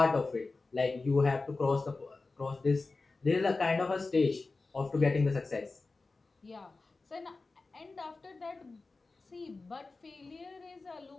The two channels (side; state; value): right; quieter; 3.7 dB